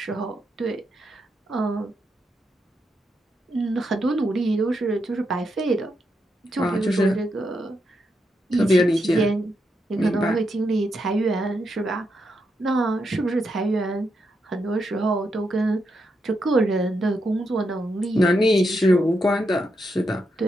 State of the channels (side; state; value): both; normal; correlation 0.83